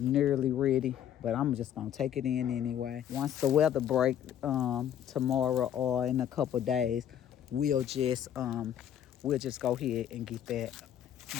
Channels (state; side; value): quieter; right; 10.1 dB